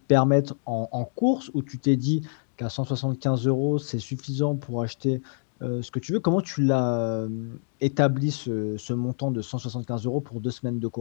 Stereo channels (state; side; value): silent; right; digital silence